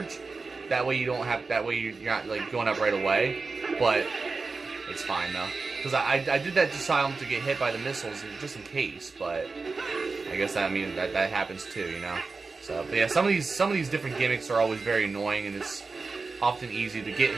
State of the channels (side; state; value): left; quieter; 4.2 dB